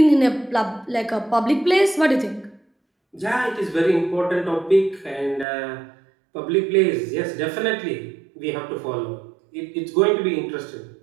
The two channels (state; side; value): drops out; left; at 5.5 s